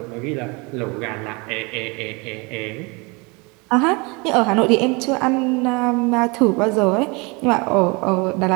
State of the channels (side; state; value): left; quieter; 28.1 dB